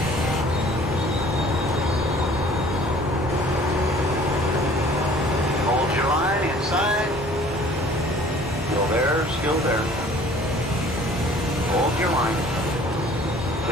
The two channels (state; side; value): normal; both; correlation 0.52